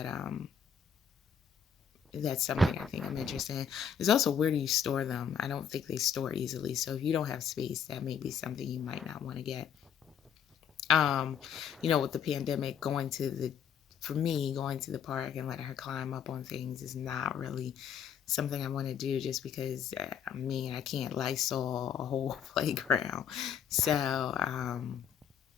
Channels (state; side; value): quieter; right; 7.6 dB